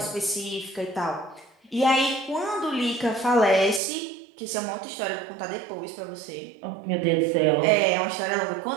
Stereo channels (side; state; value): left; drops out; at 3.8 s